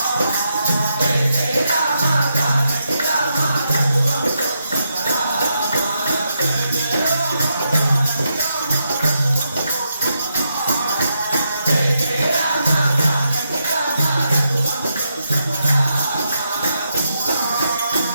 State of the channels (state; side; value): inverted; both; correlation -0.82